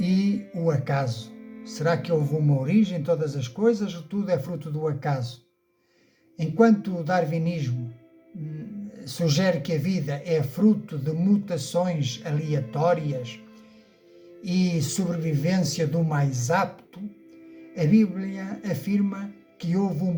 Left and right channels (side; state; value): both; identical; correlation 1.00